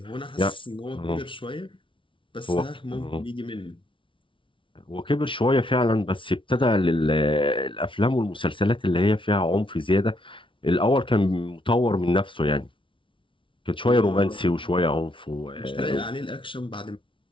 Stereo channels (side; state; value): right; late; 0.25 ms